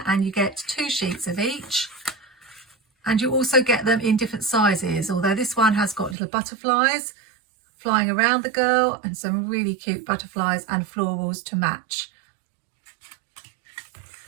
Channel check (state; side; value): drops out; left; at 6.2 s